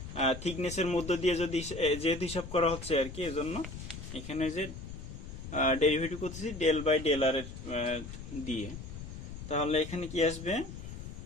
থিকনেসের মধ্য দিয়ে যেহেতু হিসাব করা হচ্ছে আর কি, এজন্য এখানে যে ডেরিভেটিভ করতেছি ডেল বাই ডেল আর দিয়ে। তাহলে এখানে কি আসবে,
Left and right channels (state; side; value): noise; left; rumble, 10 dB below the sound